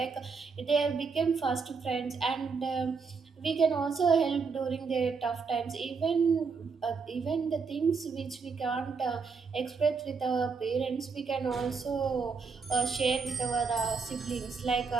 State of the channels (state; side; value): quieter; left; 5.0 dB